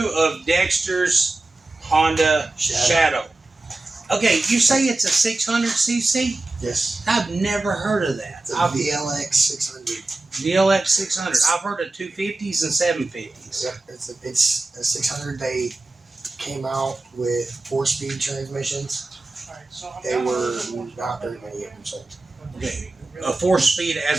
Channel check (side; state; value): left; quieter; 3.0 dB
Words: of Dexter's Honda Shadow. Okay, you say it's a 600cc? Yes. I've never heard of that. It's a VLX 600. VLX 600. I've heard of 250s and 750s. Yep, it's a 600. They came out with 4-speed transmissions. They were not very many of them sold. Okay, a 4-speed